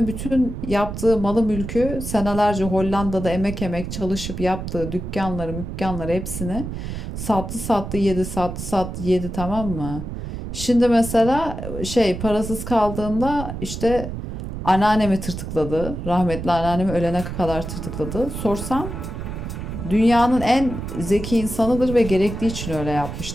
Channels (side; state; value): right; noise; rumble, 7 dB below the sound